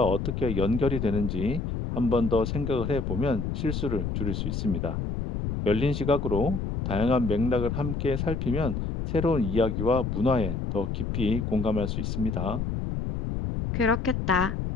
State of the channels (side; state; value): left; noise; rumble, 2 dB below the sound